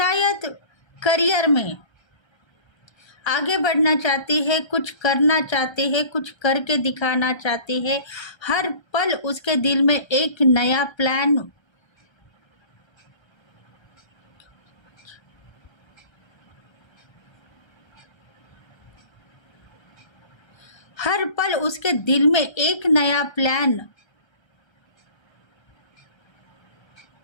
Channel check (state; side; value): late; right; 1.3 ms